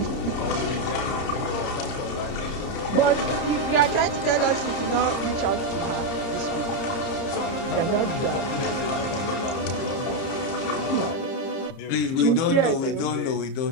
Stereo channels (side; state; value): right; late; 30 ms